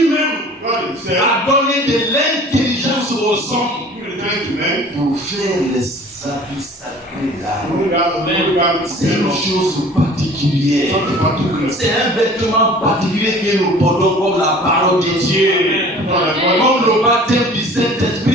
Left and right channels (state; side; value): normal; both; correlation 0.47